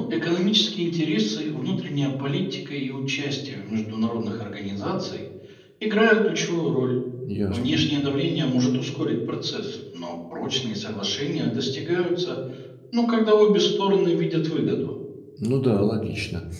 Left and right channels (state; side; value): identical; both; correlation 1.00